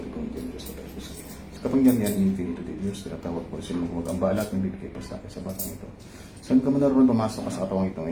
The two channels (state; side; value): identical; both; correlation 1.00